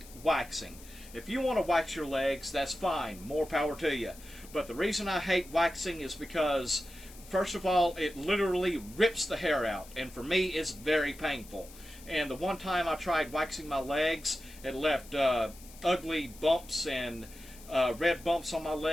waxing. If you want to wax your legs, that's fine. More power to you. But the reason I hate waxing is because, first of all, it literally rips the hair out, and for me, it's very painful. And the one time I tried waxing my legs, it left ugly bumps and red bumps on my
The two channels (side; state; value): left; noise; hiss, 20 dB below the sound